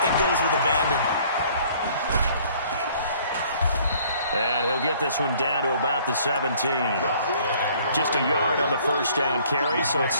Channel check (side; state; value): both; inverted; correlation -0.57